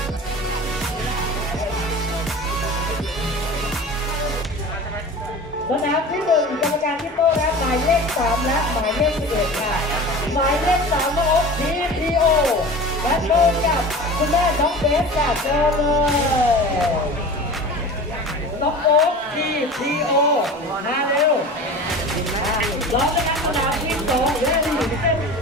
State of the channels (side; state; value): both; normal; correlation 0.36